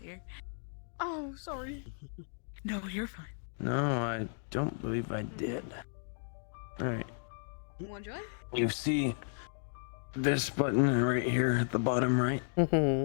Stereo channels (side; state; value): right; silent; digital silence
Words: here. Oh, sorry. No, you're fine. No, I don't believe I did. Alright. One joy? You see this button right here at the bottom right?